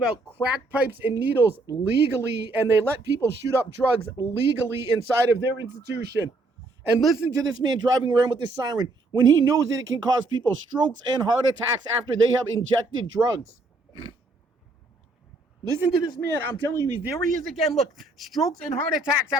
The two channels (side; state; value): left; quieter; 3.0 dB